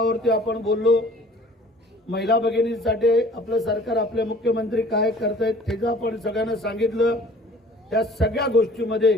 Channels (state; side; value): normal; both; correlation 0.50